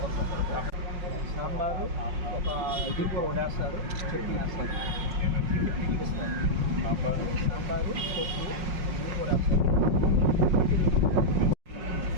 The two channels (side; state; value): left; late; 5.5 ms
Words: సాంబారు ఒక ఇది కూడా వడేస్తారు చట్నీ వేస్తారు సాంబారు పప్పు అన్నీ కూడా వేస్తారు